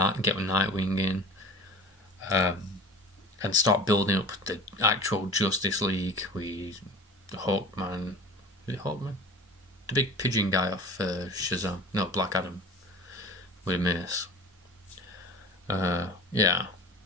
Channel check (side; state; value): both; normal; correlation 0.39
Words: get Nightwing in, and start building up the actual Justice League with Hawkman. Is it Hawkman? The big pigeon guy off Shazam. No, Black Adam with a mace. Yeah.